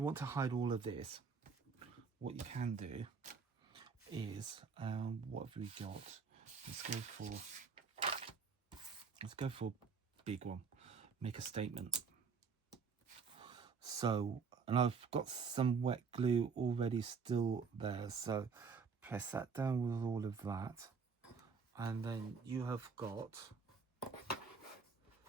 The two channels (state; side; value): quieter; left; 5.4 dB